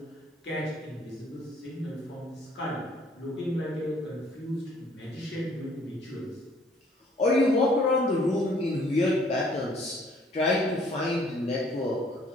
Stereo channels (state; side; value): normal; both; correlation 0.60